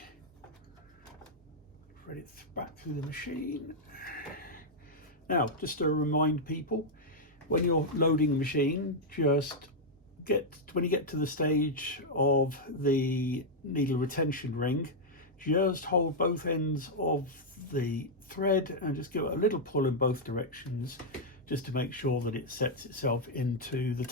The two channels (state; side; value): normal; both; correlation -0.03